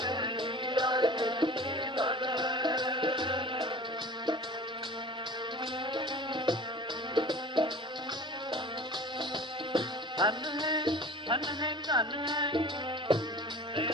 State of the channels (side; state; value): both; normal; correlation 0.41